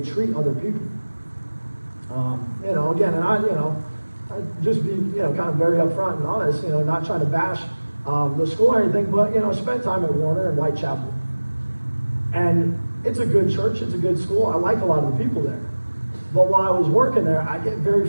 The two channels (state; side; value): inverted; both; correlation -1.00